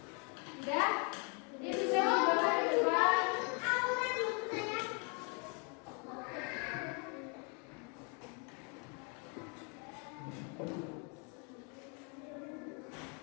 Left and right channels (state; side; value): quieter; right; 35.8 dB